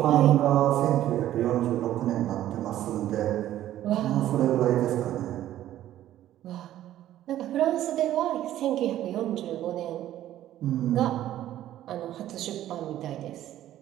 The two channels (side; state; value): left; quieter; 12.9 dB